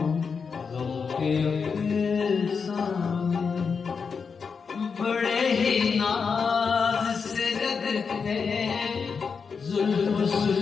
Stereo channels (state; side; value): quieter; right; 5.6 dB